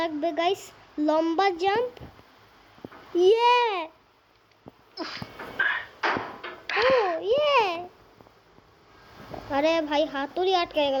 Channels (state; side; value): identical; both; correlation 1.00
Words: লাগবে গাইস, লম্বা জাম্প। আরে ভাই হাতুড়ি আটকে